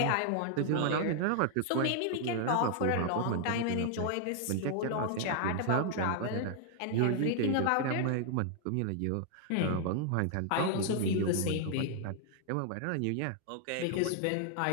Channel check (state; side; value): different; both; correlation 0.00